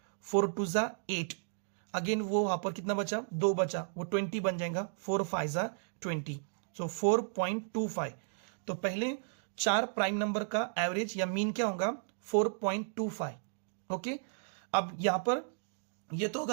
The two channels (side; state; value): left; silent; digital silence